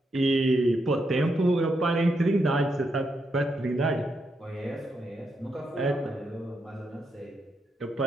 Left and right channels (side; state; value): both; normal; correlation 0.81